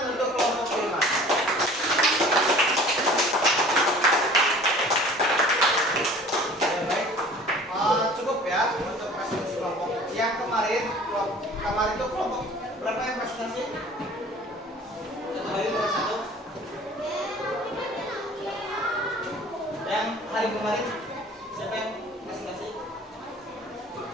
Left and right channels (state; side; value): normal; both; correlation 0.47